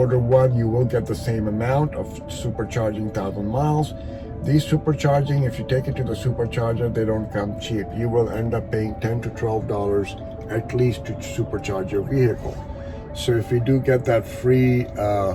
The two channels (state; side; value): identical; both; correlation 1.00